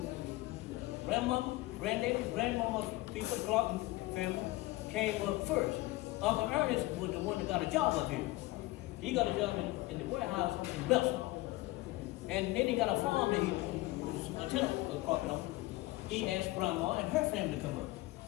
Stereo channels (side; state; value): right; quieter; 19.4 dB